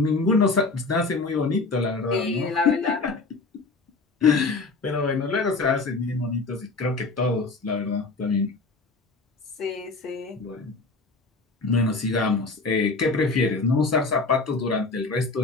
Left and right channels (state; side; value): quieter; right; 3.8 dB